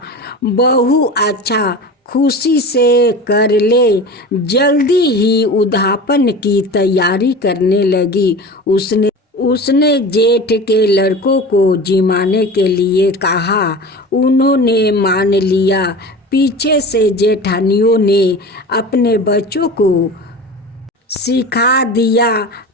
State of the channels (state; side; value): normal; both; correlation 0.33